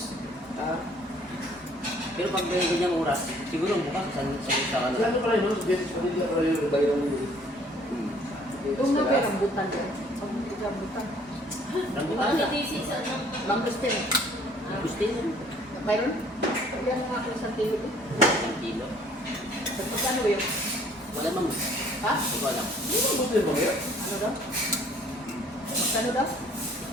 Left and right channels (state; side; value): normal; both; correlation 0.57